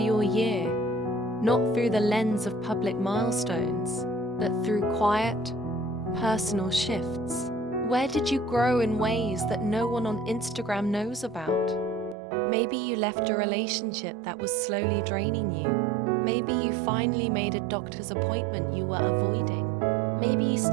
year, not through the lens of public milestones, but through quiet, personal shifts. Where did you grow in ways that no one on Instagram knows about? Maybe you left a relationship that was slowly draining you. Maybe you finally made a doctor's appointment you were avoiding. Maybe you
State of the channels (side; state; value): left; drops out; at 12.2 s